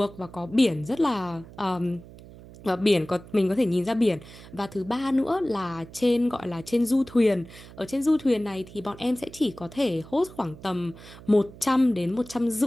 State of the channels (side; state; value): right; noise; hum, 18 dB below the sound